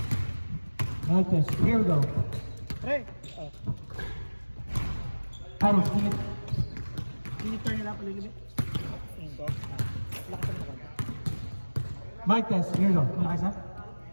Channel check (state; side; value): inverted; both; correlation -1.00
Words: Mic test. Here we go. Pre. Carlos, can you turn it up a little bit? Mic test. Here we go. Malakas na?